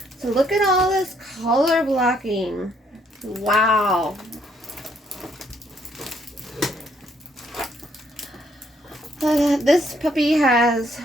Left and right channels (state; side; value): normal; both; correlation 0.69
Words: So look at all this color blocking. Wow. This puppy has